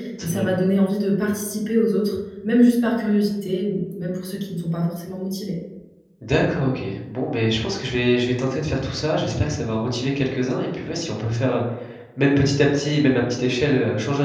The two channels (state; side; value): identical; both; correlation 1.00